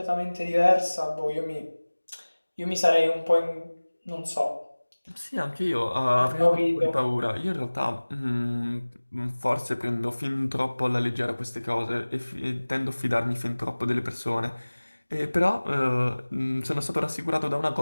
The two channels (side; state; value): both; inverted; correlation -1.00